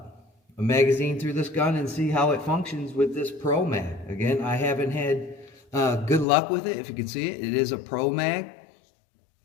magazine through this gun and see how it functions with this Pro Mag. Again, I haven't had good luck with it. If you can see it, it is a Pro Mag.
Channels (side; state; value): right; drops out; at 6.2 s